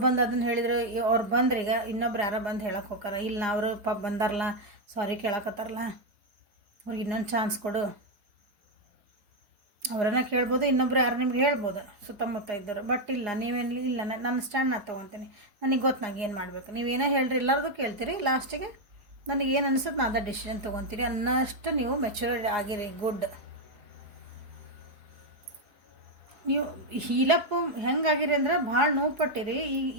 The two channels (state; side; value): late; left; 4.8 ms